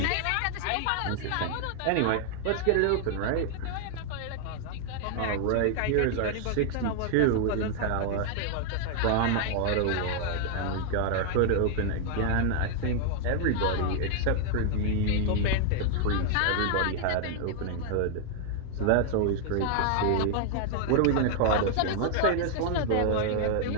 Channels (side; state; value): both; different; correlation 0.00